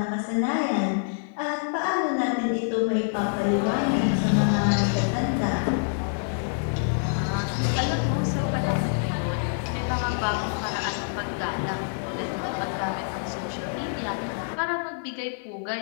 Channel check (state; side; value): silent; right; digital silence